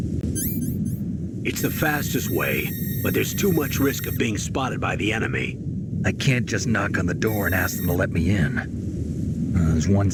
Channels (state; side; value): identical; both; correlation 1.00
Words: It's the fastest way, but there's too much risk of being spotted by the enemy. I can't just knock on the door and ask them to let me in. There's one